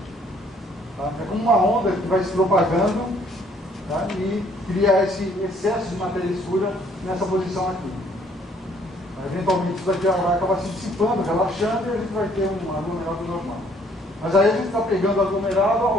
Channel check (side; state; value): both; normal; correlation 0.63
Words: Tá? É como uma onda que vai se propagando, tá? E cria esse excesso de matéria escura nessa posição aqui. Eventualmente isso daqui vai acabar se dissipando, relaxando, e a gente vai ter um aglomerado normal. Mas aí a gente está pegando aglomerado